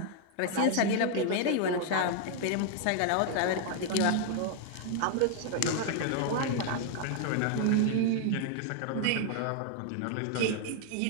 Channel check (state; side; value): different; both; correlation 0.00